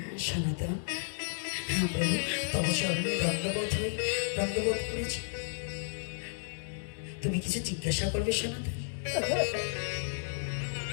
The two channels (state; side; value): silent; right; 56 dB below the other